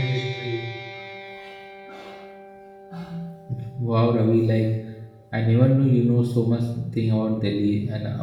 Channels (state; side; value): identical; both; correlation 1.00